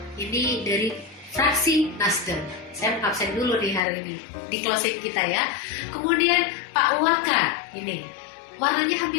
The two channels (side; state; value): right; drops out; at 3.8 s